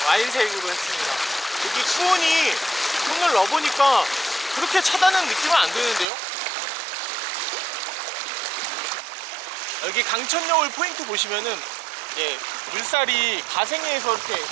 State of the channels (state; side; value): drops out; left; at 6.1 s